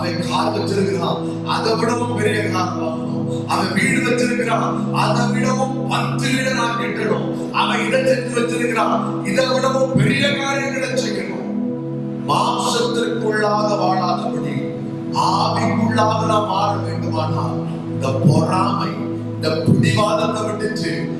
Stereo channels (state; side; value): identical; both; correlation 1.00